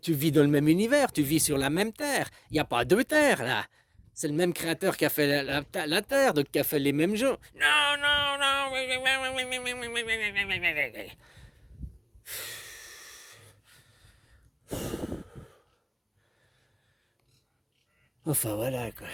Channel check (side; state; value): both; identical; correlation 1.00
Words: vis dans le même univers, tu vis sur la même terre. Il n'y a pas deux terres, là. C'est le même créateur qui a fait la terre, donc qui a fait les mêmes gens. Non, non, non. Enfin voilà quoi.